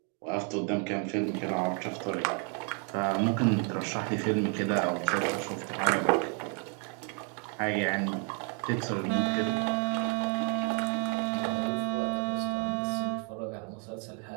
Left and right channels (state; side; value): quieter; left; 39.2 dB